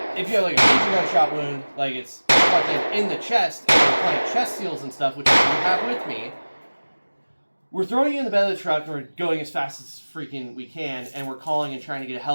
if you have like a major gunshot wound, like it's fucking in the chest, and you're playing chest seals and stuff, which you have with me, we're throwing you in the bed of the truck and we're going as fast as freaking we can, and we're calling and trying to get a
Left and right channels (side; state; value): both; inverted; correlation -1.00